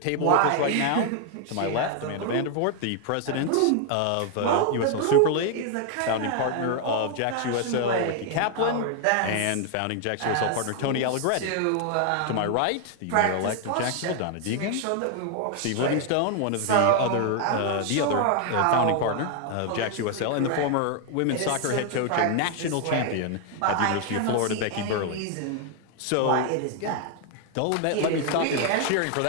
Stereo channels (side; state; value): both; different; correlation 0.00